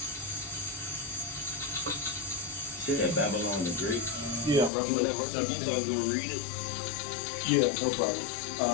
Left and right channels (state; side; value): drops out; right; at 4.7 s